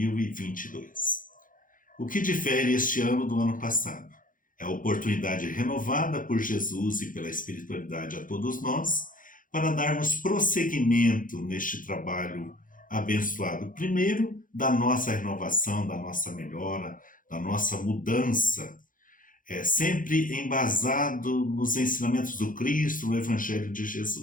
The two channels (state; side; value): late; right; 0.39 ms